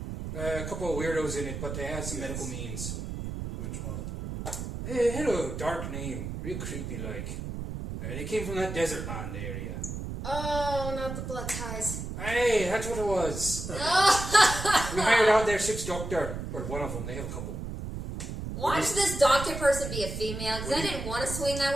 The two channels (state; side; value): noise; right; rumble, 6 dB below the sound